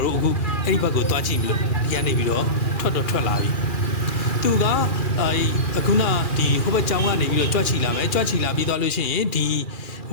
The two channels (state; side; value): late; right; 2.4 ms